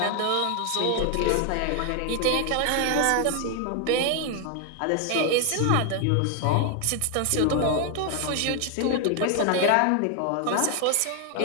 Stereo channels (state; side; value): different; both; correlation 0.00